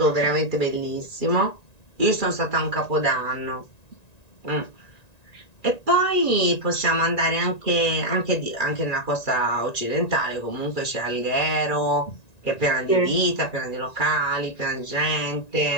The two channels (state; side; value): late; right; 1.9 ms